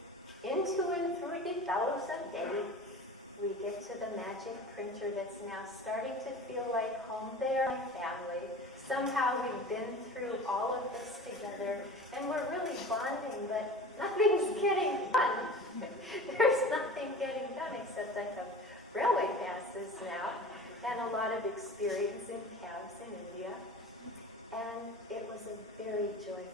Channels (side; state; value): both; normal; correlation 0.38